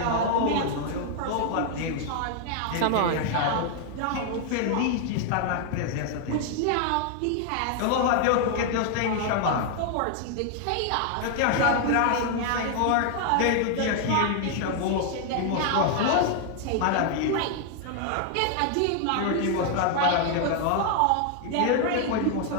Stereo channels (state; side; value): different; both; correlation 0.00